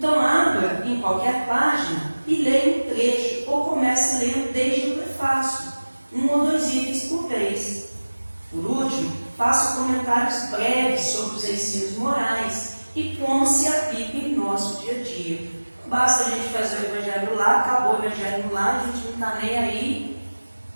abra em qualquer página e leia um trecho, ou comece lendo desde o prefácio, 1 ou 2 itens por vez. Por último, faça comentários breves sobre os ensinos morais e como se aplica em nosso dia a dia. Não basta a gente fazer o Evangelho lá, acabou o Evangelho lá, a gente não está nem aí,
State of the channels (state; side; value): inverted; both; correlation -1.00